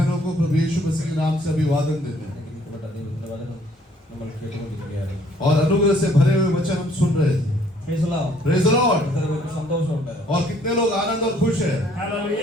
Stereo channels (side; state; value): both; normal; correlation 0.62